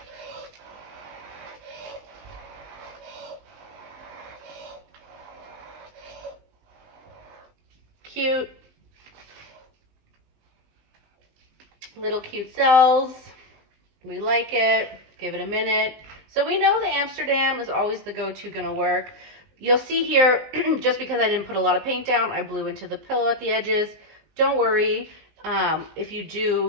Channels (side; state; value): left; late; 19 ms